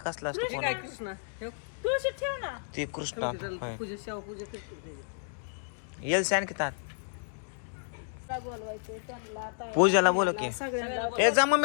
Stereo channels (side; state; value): right; silent; digital silence